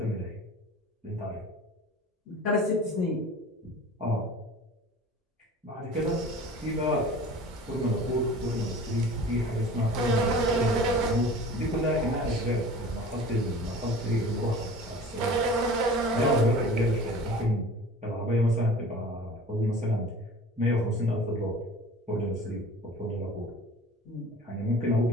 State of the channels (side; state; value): both; normal; correlation 0.42